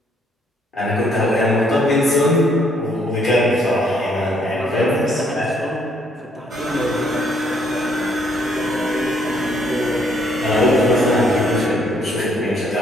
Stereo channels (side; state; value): both; normal; correlation 0.68